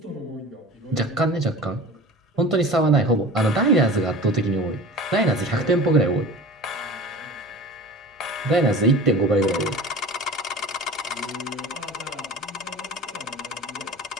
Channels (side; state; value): both; normal; correlation 0.37